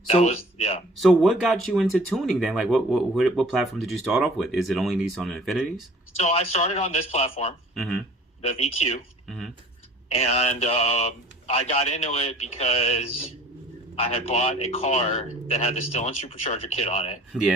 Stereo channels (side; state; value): both; normal; correlation 0.49